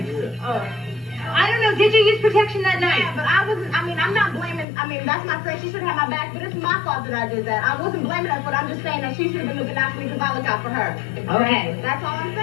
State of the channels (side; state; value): right; drops out; at 4.7 s